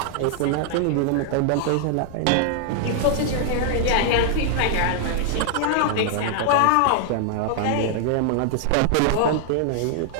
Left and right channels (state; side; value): different; both; correlation 0.00